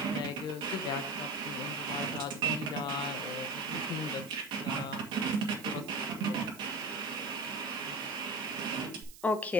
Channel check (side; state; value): right; noise; hiss, 18 dB below the sound